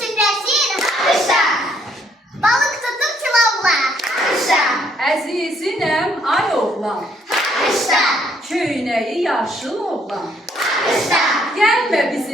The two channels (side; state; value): both; normal; correlation 0.68